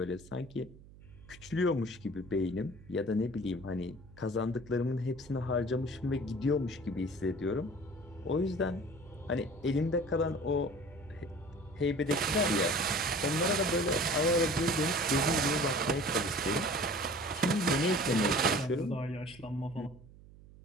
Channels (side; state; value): right; noise; hum, 21 dB below the sound